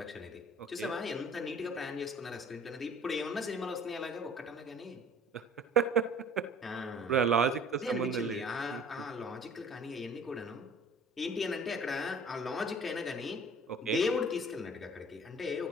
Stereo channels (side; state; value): both; normal; correlation 0.48